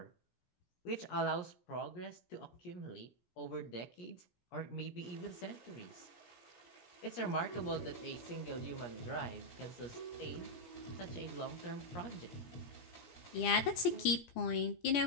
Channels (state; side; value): late; right; 17 ms